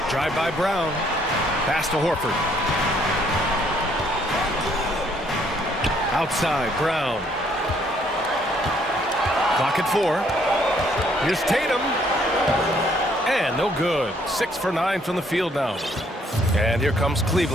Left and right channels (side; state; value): both; normal; correlation 0.66